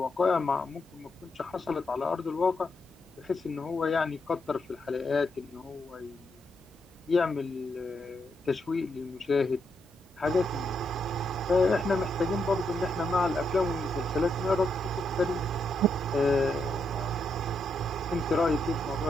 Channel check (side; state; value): both; normal; correlation 0.81